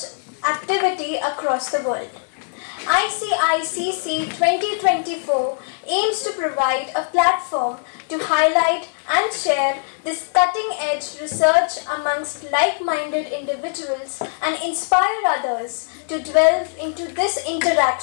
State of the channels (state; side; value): silent; right; digital silence